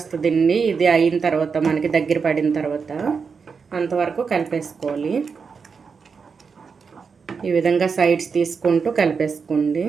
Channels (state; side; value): quieter; left; 5.5 dB